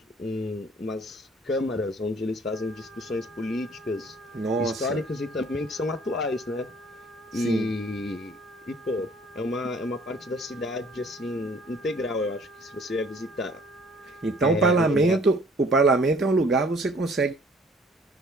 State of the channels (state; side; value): normal; both; correlation 0.56